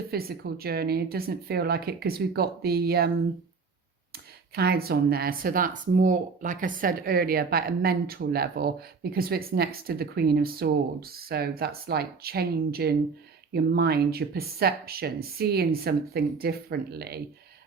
physical journey. It doesn't feel like it because we've got the clouds on there. So that's more, like I said earlier, about a mental level because it's next to the Queen of Swords. So that's like changing your mind, your perception, seeing something differently.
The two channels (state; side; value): quieter; left; 4.9 dB